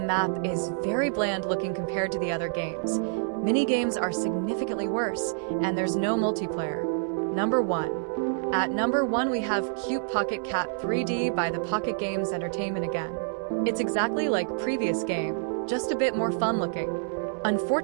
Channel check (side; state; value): left; silent; 60 dB below the other